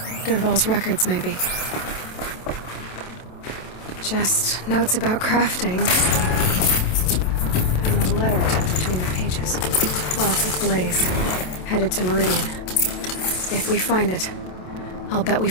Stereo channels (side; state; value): right; late; 27 ms